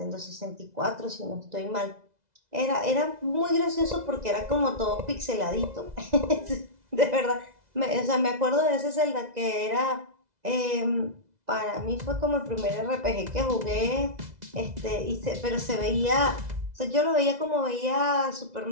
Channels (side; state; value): left; late; 2.0 ms